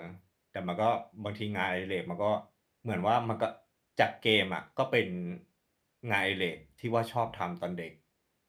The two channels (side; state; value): both; identical; correlation 1.00